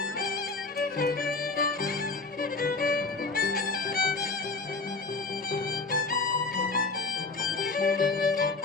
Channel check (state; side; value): quieter; right; 3.9 dB